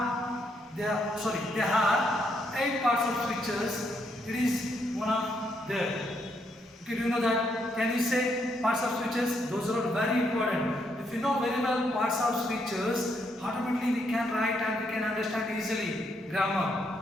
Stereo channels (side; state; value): both; normal; correlation 0.76